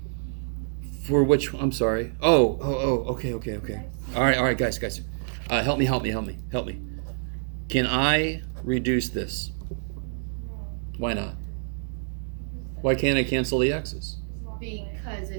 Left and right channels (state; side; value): silent; left; digital silence